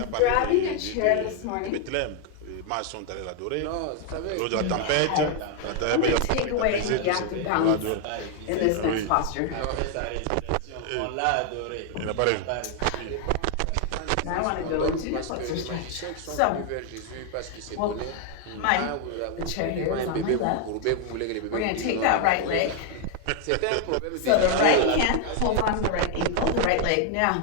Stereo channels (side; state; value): both; different; correlation 0.00